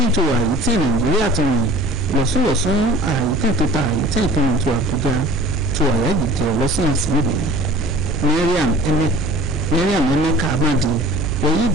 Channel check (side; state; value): both; normal; correlation 0.45